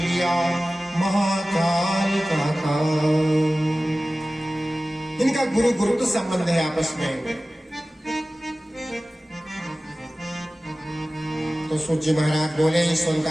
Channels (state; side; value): normal; both; correlation 0.97